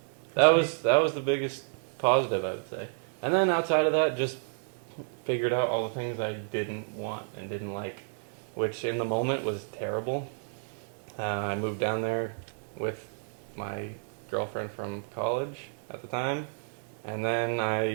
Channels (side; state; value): left; silent; 57 dB below the other